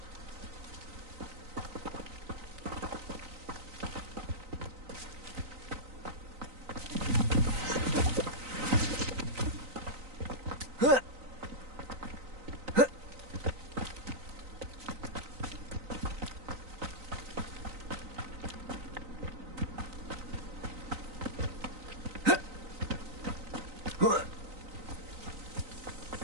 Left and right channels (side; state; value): left; late; 3.9 ms